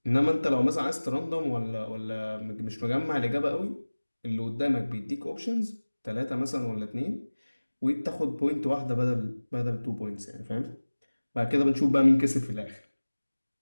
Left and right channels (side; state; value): both; inverted; correlation -1.00